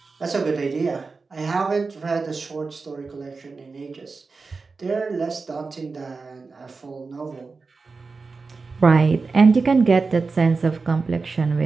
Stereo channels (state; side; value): quieter; left; 4.3 dB